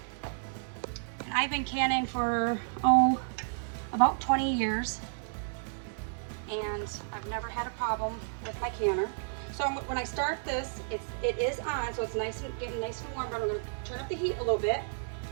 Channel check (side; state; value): left; silent; digital silence